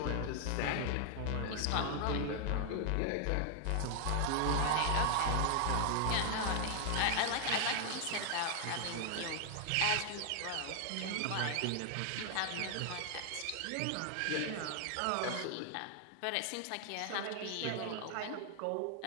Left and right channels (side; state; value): both; different; correlation 0.00